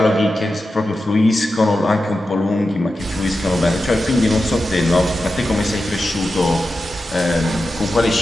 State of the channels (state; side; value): normal; both; correlation 0.91